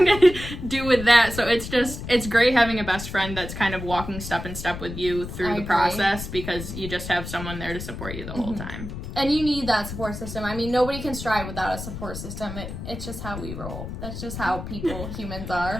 to do with that. So it's great having a best friend that's kind of walking step in step with you through the process because you just have someone there to support you the whole time. And you need that support system. I mean, nobody can strive without a support system. It's just how we roll. That's just how humans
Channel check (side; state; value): left; noise; rumble, 8 dB below the sound